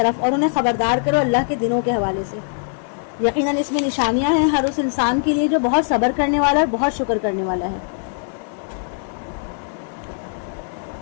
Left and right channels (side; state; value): right; silent; digital silence